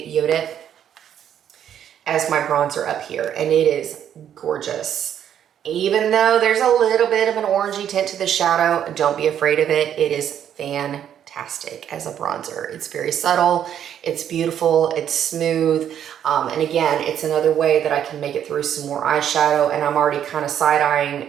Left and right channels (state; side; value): quieter; left; 9.6 dB